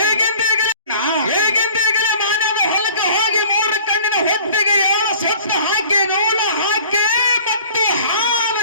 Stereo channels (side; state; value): both; inverted; correlation -0.49